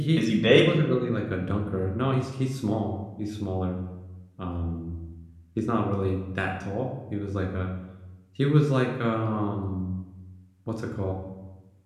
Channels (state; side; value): identical; both; correlation 1.00